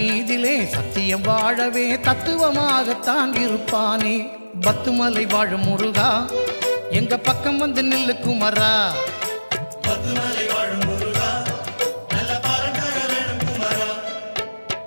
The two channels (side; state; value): both; inverted; correlation -1.00